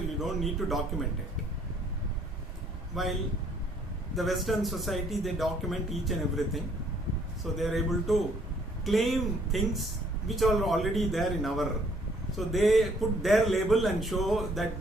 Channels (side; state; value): both; normal; correlation 0.64